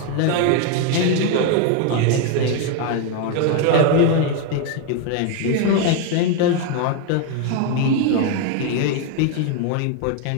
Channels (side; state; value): both; different; correlation 0.01